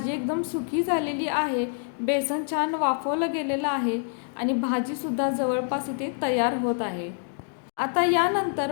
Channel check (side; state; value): right; silent; digital silence